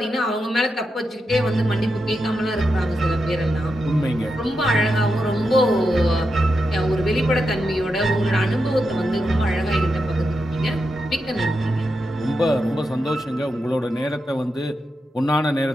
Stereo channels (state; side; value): normal; both; correlation 0.87